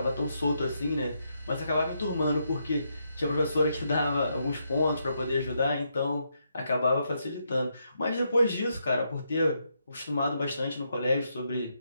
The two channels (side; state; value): both; inverted; correlation -0.79